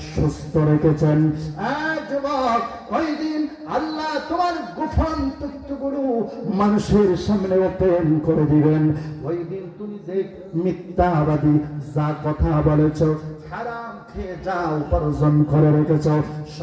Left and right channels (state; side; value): identical; both; correlation 1.00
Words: সুস্থ রেখেছেন, যুবক, ওই দিন আল্লাহ তোমার গোপন তথ্যগুলো মানুষের সামনে ওপেন করে দিবেন। ওই দিন তুমি যে মিথ্যাবাদী যা কথা বলেছ, হারাম খেয়ে যা উপার্জন করে রেখেছ,